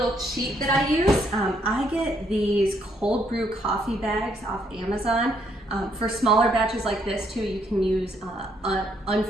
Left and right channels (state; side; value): normal; both; correlation 0.71